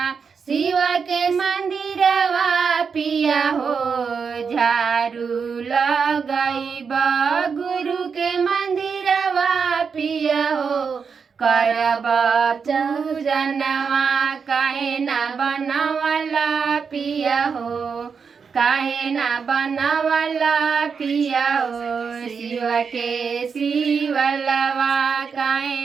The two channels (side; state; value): left; quieter; 5.9 dB